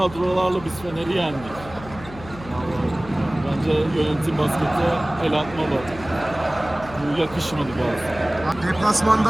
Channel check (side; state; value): left; noise; hum, 16 dB below the sound